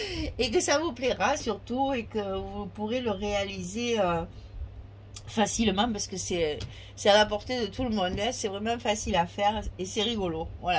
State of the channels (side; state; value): both; identical; correlation 1.00